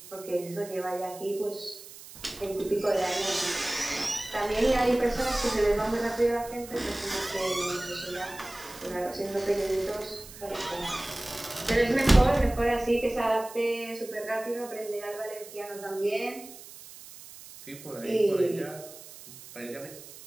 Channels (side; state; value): right; noise; hiss, 17 dB below the sound